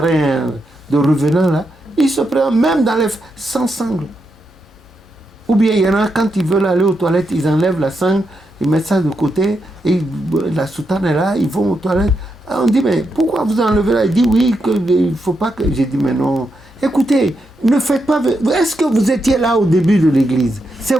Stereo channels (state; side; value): normal; both; correlation 0.84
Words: de revenants, là. Ils se prennent même sans sangle. Ou bien il y en a, quand ils veulent aller aux toilettes, ils enlèvent la sangle, ils mettent ça de côté, et la soutane est là, ils vont aux toilettes. On dit, mais pourquoi vous enlevez là? Il dit, oui, il ne faut pas que... J'ai dit, mais non. Écoutez, ne faites pas... Est-ce que vous étiez là au début de l'église?